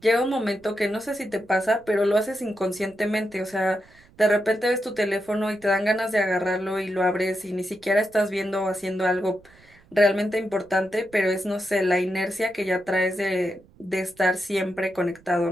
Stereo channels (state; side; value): noise; right; rumble, 28 dB below the sound